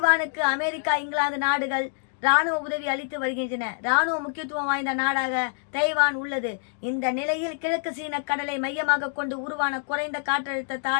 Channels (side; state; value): right; silent; digital silence